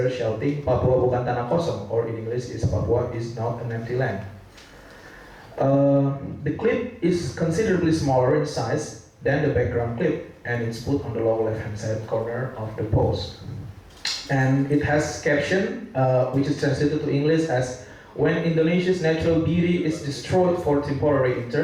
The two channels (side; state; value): both; identical; correlation 1.00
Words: shouting, "Papua bukan tanah kosong," or in English is "Papua is not an empty land." The clip is considerably smaller in size than the background clip, and it's put on the lower left-hand side corner of the post. And it has caption, which is translated to English as, "When Indonesia's natural beauty is destroyed for temporary